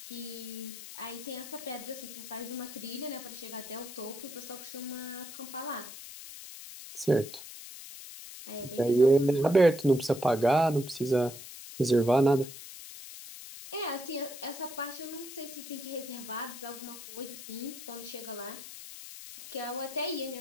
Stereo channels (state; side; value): noise; left; hiss, 13 dB below the sound